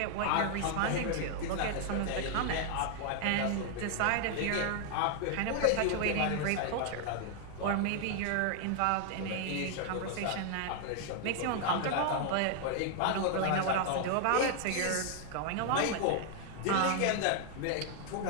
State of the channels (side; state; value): both; different; correlation 0.00